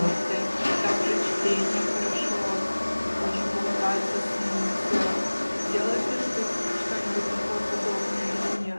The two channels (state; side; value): inverted; both; correlation -1.00